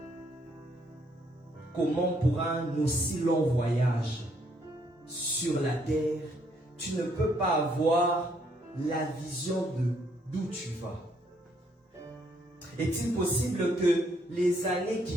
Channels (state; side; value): normal; both; correlation 0.70